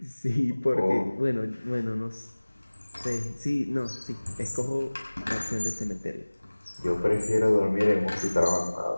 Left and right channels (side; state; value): both; inverted; correlation -1.00